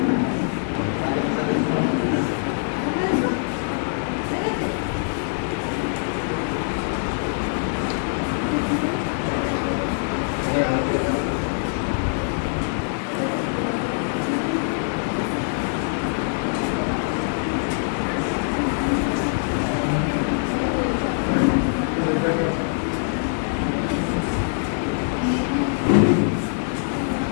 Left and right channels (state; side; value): silent; right; 62 dB below the other